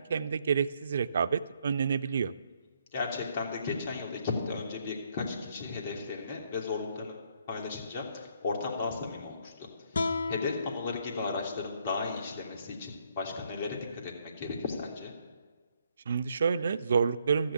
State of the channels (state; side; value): inverted; both; correlation -0.71